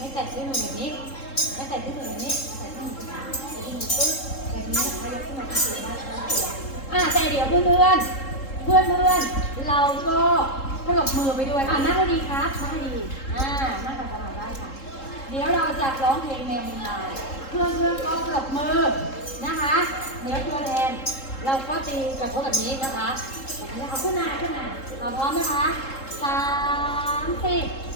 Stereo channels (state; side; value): late; right; 3.7 ms